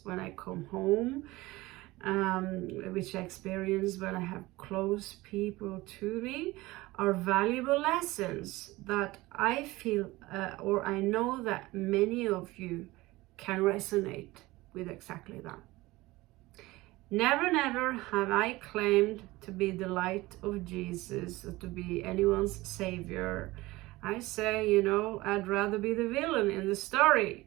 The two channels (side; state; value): left; quieter; 19.8 dB